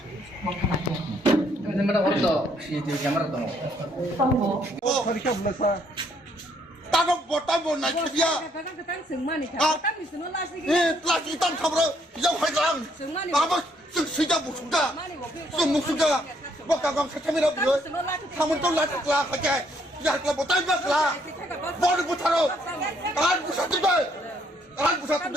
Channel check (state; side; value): normal; both; correlation 0.69